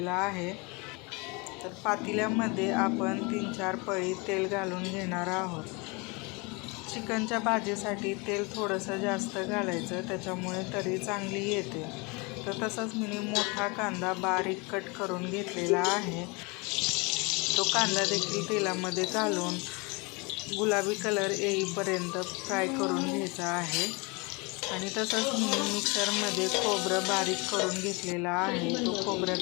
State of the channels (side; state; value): right; quieter; 28.4 dB